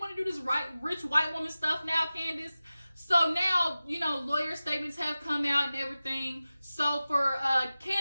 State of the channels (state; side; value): inverted; both; correlation -0.96